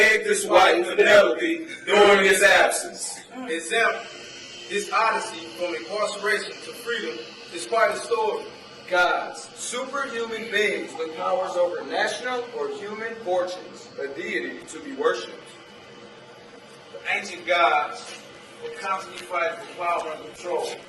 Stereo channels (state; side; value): identical; both; correlation 1.00